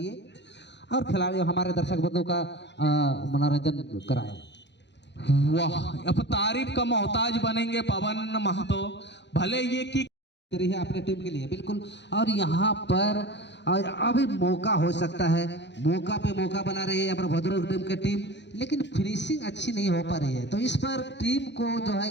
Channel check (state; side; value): late; right; 0.51 ms